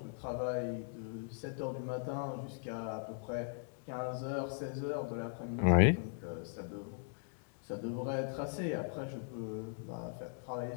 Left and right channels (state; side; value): silent; right; digital silence